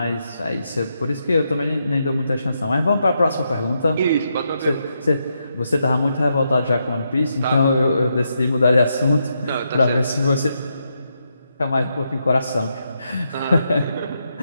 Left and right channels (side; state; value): both; inverted; correlation -0.82